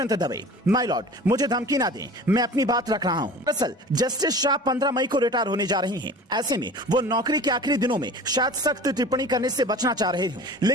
Dave, my Lord, मुझे धमकी ना दें, मैं अपनी बात रख रहा हूं। दरअसल जस्टिस शाह 15 मई को रिटायर होने जा रही हैं। ऐसे में वो नौकरी के आखिरी दिनों में शायद सख्त टिप्पणी करने से बचना चाह रहे हों।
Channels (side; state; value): both; normal; correlation 0.40